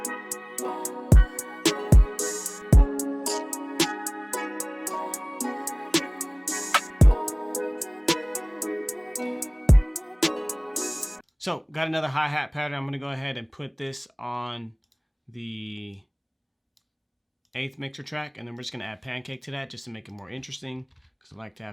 So got another hi-hat pattern. I'm gonna go ahead and put this on the 8th mixer track, and then we're just gonna add pancake to that just to make it more interesting, because I like to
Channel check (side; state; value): both; identical; correlation 1.00